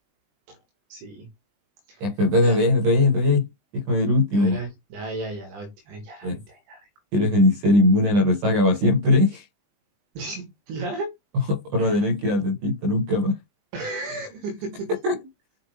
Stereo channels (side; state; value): left; late; 20 ms